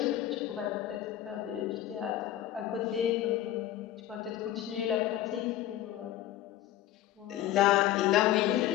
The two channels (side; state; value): right; quieter; 13.0 dB